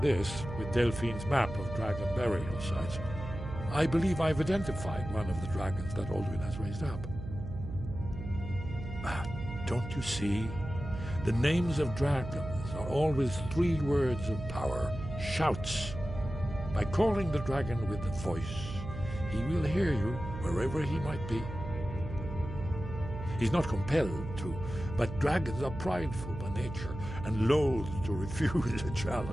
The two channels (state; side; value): noise; right; hum, 9 dB below the sound